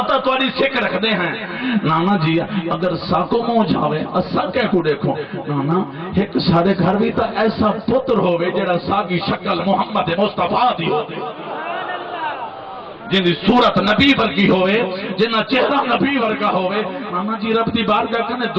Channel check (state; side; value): identical; both; correlation 1.00